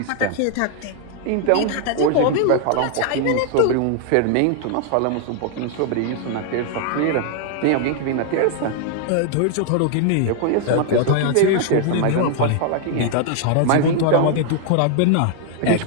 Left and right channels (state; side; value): different; both; correlation 0.00